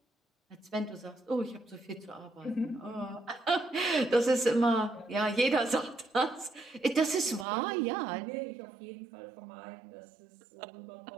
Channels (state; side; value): drops out; left; at 7.5 s